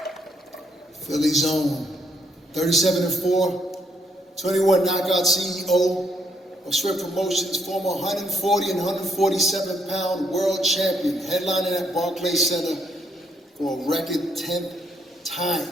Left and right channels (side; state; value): both; normal; correlation 0.72